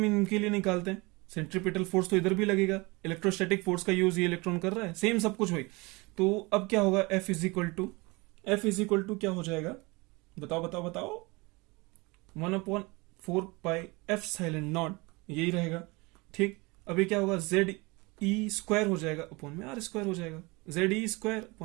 इनके लिए निकालते हैं। सेंट्रीपिटल फोर्स तो इधर भी लगेगा, इलेक्ट्रोस्टैटिक फोर्स का यूज ये इलेक्ट्रॉन कर रहा है, सेम सब कुछ वही। तो अब क्या होगा? एफ इज इक्वल टू क्या हो जाएगा? बताओ बताओ बताओ। 1/4πε0 यही रहेगा। ठीक, अभी क्या होगा? जेड ई स्क्वायर हो जाएगा अपॉन में आर स्क्वायर हो जाएगा। जेड ई स्क्वायर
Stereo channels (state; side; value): quieter; left; 25.4 dB